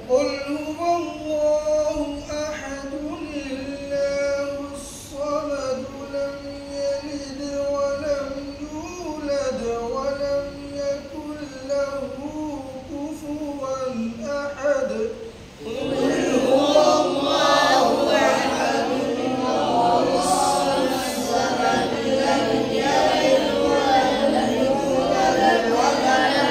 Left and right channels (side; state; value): both; identical; correlation 1.00